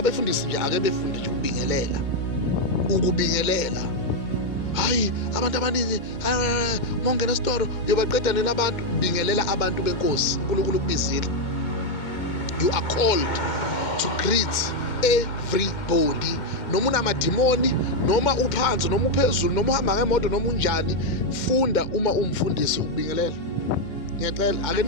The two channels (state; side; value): late; right; 2.1 ms